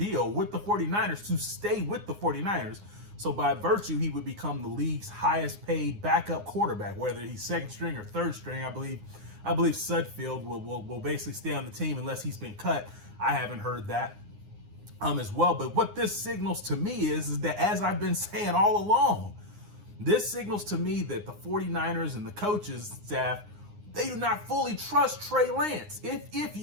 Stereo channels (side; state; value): left; late; 9.7 ms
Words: with the 49ers to stay with the 49ers. So by virtue, he would become the league's highest paid backup quarterback, whether he's second string or third string. I believe Sudfeld will basically stay on the team unless he's been cut. I haven't heard that as well. But what this signals to me is that, as I've been saying all along, this signals to me that the 49ers and the coaches staff, they do not fully trust Trey Lance. If